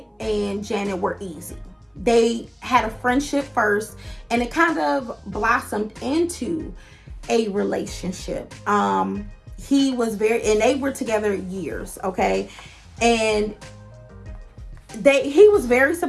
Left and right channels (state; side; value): identical; both; correlation 1.00